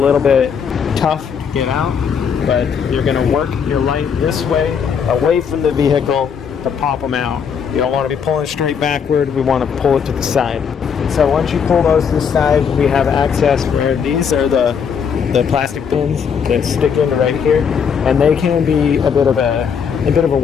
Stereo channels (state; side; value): quieter; right; 6.9 dB